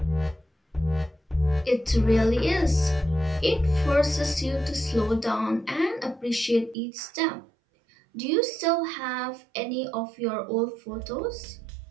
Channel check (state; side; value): drops out; left; at 6.8 s